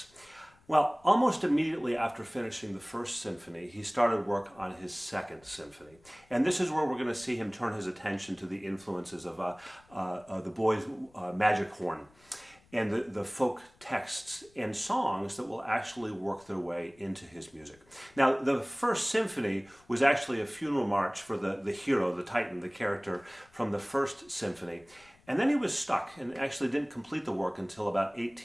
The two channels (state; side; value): noise; left; rumble, 30 dB below the sound